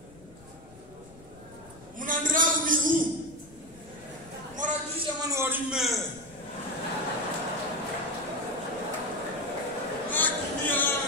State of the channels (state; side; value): noise; left; rumble, 22 dB below the sound